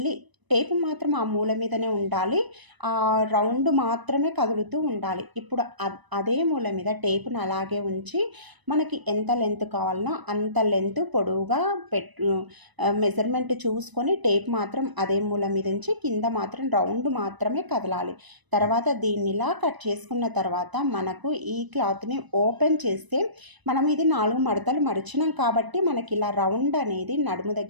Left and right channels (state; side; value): late; left; 1.0 ms